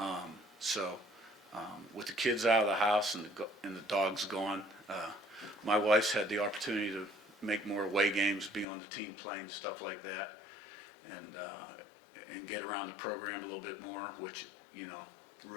With the kids out of the house and the dogs gone, my wife's had the opportunity to make more away games, be on the team plane, stuff like that, and get around the program a little bit more, which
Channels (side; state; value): right; drops out; at 8.7 s